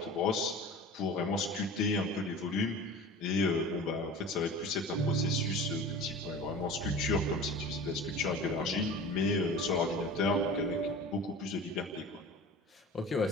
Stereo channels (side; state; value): both; normal; correlation 0.38